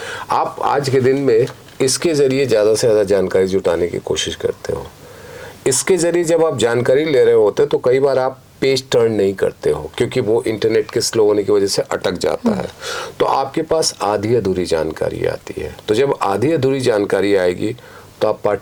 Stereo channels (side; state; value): both; identical; correlation 1.00